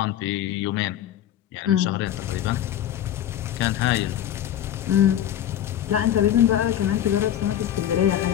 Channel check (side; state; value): right; quieter; 11.2 dB